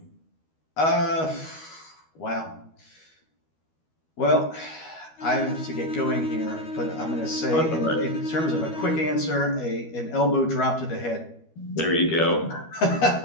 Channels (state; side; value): late; right; 12 ms